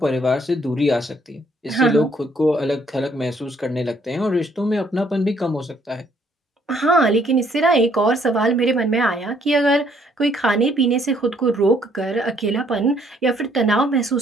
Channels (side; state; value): both; normal; correlation 0.66